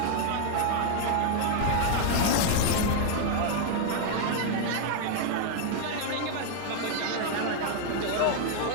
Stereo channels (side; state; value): both; different; correlation 0.00